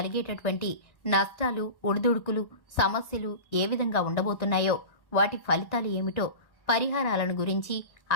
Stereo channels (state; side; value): late; right; 1.8 ms